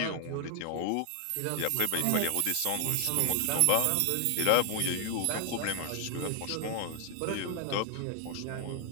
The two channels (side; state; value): both; different; correlation 0.00